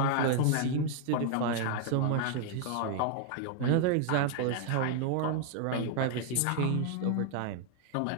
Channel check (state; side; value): different; both; correlation 0.00